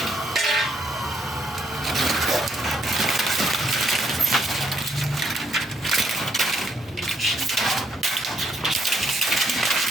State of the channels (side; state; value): both; normal; correlation 0.73